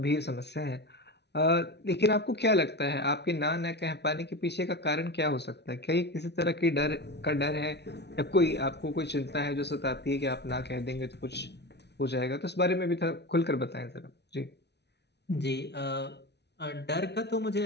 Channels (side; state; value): right; late; 0.49 ms